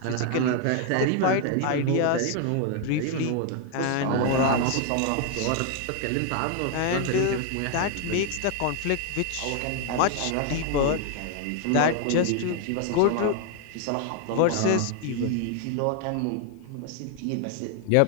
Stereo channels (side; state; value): both; different; correlation 0.00